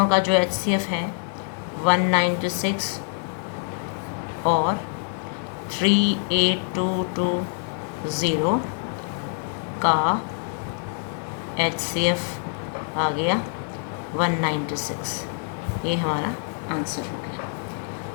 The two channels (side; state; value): right; silent; 55 dB below the other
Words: का जो HCF है 196 और 38220 का HCF आ गया 196। ये हमारा आंसर हो गया।